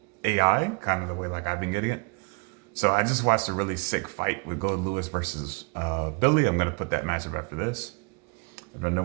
kind of the way like I've been getting it. So I just watched a really sick fight with Gold Lewis versus Billy. I'm gonna put that matchup after this. I'm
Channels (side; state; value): left; quieter; 32.4 dB